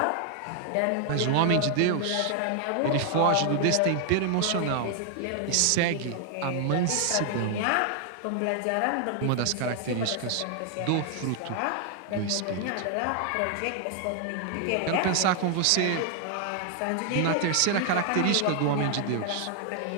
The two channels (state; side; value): different; both; correlation 0.00